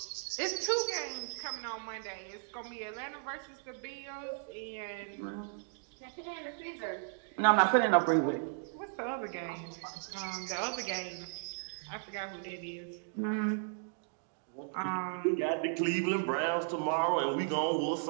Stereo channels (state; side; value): silent; left; digital silence